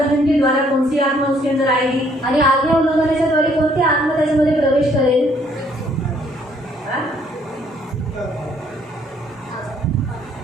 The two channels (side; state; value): both; normal; correlation 0.65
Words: के द्वारा कौन सी आत्मा उसके अंदर आएगी? आणि आज्ञा उल्लंघनाच्या द्वारे कोणती आत्मा त्याच्यामध्ये प्रवेश करेल.